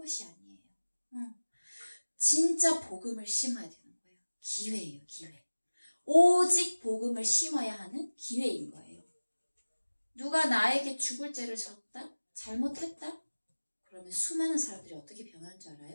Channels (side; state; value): both; inverted; correlation -1.00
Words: 아니에요. 진짜 복음을 심어야 되는 거예요. 기회예요, 기회. 오직 복음을 심어야 하는 기회인 거예요. 누가 나에게 죽을 죄를 졌다? 잘못했다? 그러면 수많은 사람들이 어떻게 변하는 줄